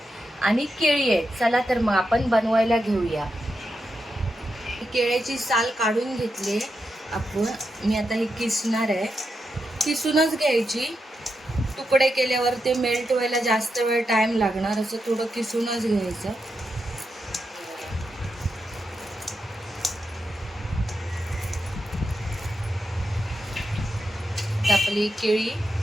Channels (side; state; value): both; normal; correlation 0.86